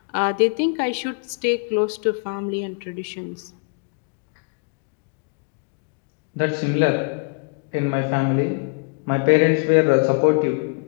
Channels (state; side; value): quieter; right; 35.3 dB